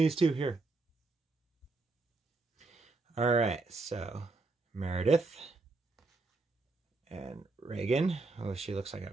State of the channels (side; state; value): left; quieter; 3.5 dB